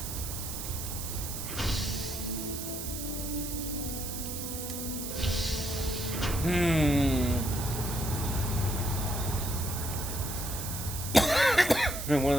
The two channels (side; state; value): right; noise; hiss, 6 dB below the sound